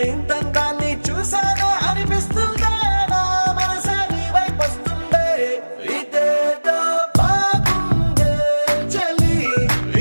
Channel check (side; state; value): both; inverted; correlation -1.00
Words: ఇంతందాన్ని చూసానే అనిపిస్తుందే, నా మనసే నీ వైపు వస్తుందే. ఇదేదో బాగుందే చలి,